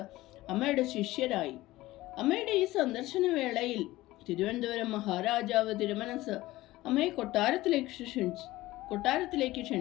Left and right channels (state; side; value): quieter; right; 17.6 dB